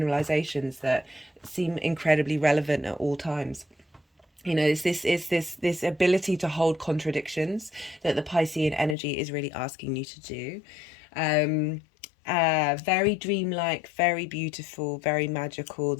that seem incredibly relevant at all times. It's this ability to hold contradictions that the Piscean energy is really asking you to do. Very dreamlike, very beautiful, very magical.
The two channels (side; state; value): right; drops out; at 9.0 s